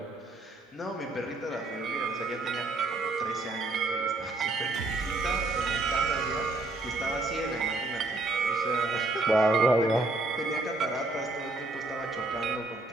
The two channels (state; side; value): quieter; left; 3.1 dB